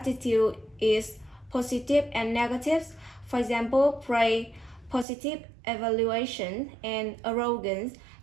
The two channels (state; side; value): drops out; left; at 5.1 s